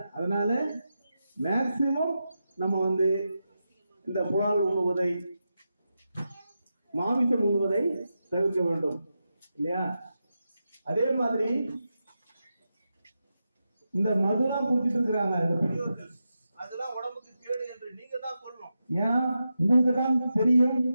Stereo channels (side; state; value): both; inverted; correlation -0.89